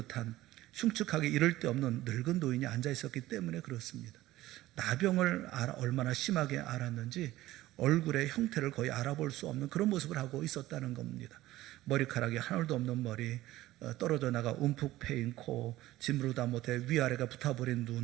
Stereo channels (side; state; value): left; quieter; 16.2 dB